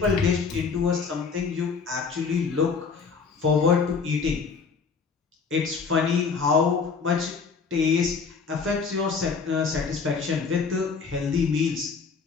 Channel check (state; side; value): quieter; right; 5.3 dB